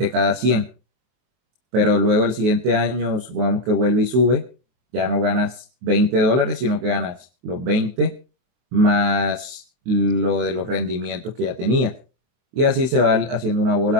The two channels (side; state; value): left; late; 24 ms